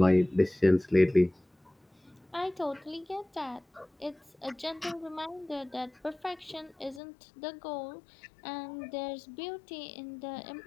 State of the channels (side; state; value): right; drops out; at 7.0 s